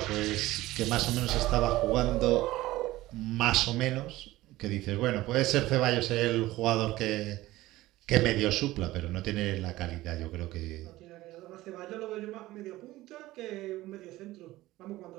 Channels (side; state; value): left; quieter; 17.3 dB